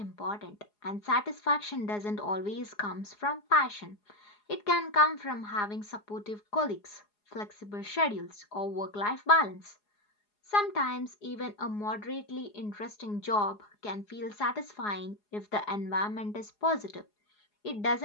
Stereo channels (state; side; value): late; right; 4.8 ms